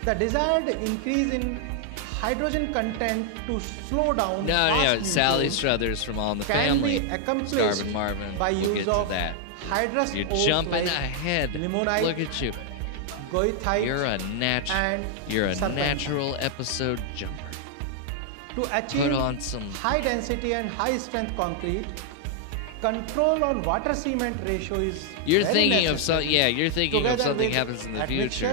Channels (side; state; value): both; different; correlation 0.00